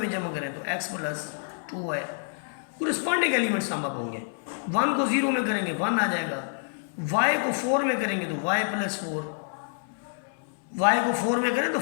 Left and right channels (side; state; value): right; silent; digital silence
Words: जमा करें तो x + 2y। Corresponding element sum up होंगे। 1 को 0 में करेंगे 1 आ जाएगा, y को 4 में करेंगे तो y + 4, y को 4 में करें तो